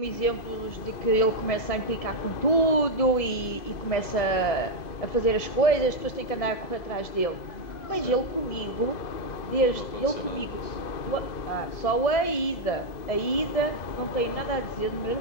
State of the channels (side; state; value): right; late; 2.0 ms